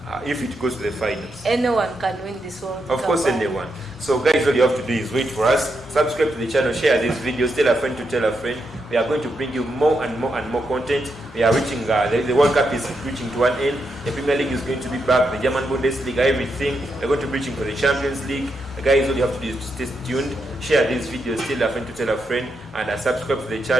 if it goes to the finals. Anyone can win this World Cup. Of course, anyone. So guys, all you have to do is wait for us, subscribe to the channel, share these videos, tell a friend to tell a friend. We are going to bring you more and more and more content. We are reaching, the World Cup is reaching to an end. The Premier League is going to be back, the German Bundesliga, everything. We're going to be reaching for the Champions League. Guys, all you have to do is to stay tuned, share these videos, tell a friend to tell a friend, and subscribe to the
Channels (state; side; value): normal; both; correlation 0.83